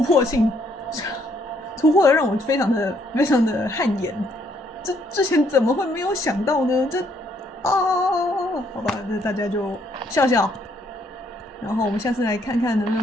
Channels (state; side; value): normal; both; correlation 0.69